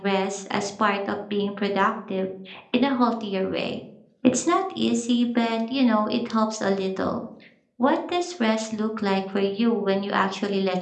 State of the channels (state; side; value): identical; both; correlation 1.00